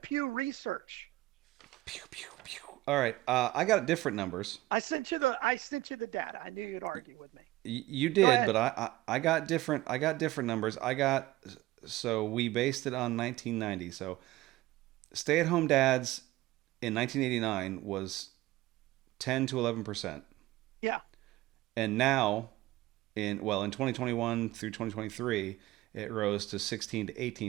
Research. Pew, pew, pew. All right. I got different numbers. I sent you the data. I knew you'd argue with me. You Go did, ahead. but I got different. I got different numbers. I got so we based it on 1990. So stay-at-home dads in 1989 was 10 to 11%, Yeah. and now in 2021 through 2023, it rose to 16 to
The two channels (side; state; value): left; quieter; 17.5 dB